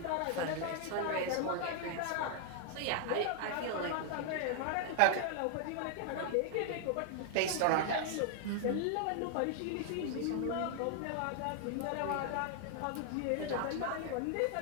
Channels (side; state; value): both; different; correlation 0.00